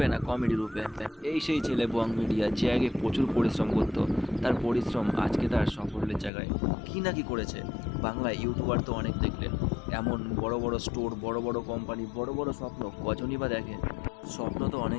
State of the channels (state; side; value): drops out; right; at 6.3 s